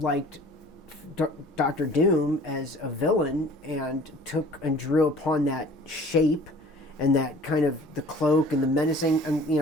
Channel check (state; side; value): normal; both; correlation 0.49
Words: Doctor Doom as a villain and drew upon that shape and that kind of the cloak and the menacing, and